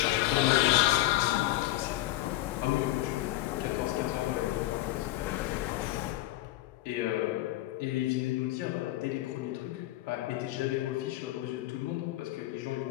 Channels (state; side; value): quieter; right; 16.3 dB